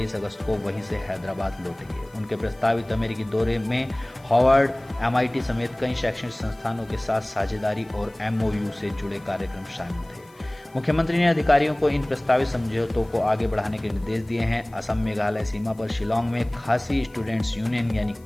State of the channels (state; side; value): noise; left; hiss, 30 dB below the sound